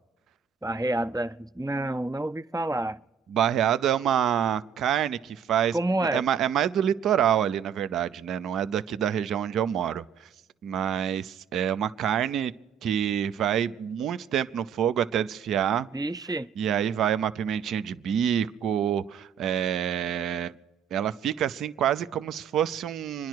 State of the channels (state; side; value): quieter; left; 7.8 dB